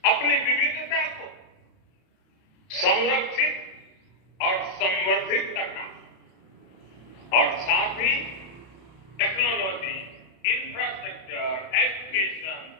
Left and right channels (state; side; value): late; right; 31 ms